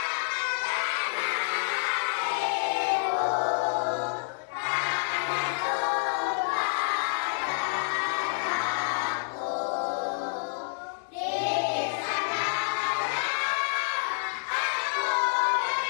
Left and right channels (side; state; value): right; silent; digital silence